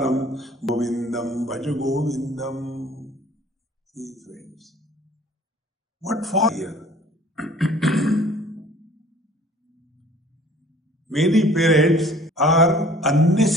govindam bhaja govindam. See, friends, what for here? Many parents are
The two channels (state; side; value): normal; both; correlation 0.52